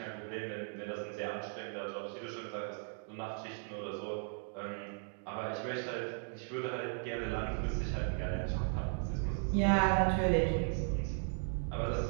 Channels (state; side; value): silent; left; 53 dB below the other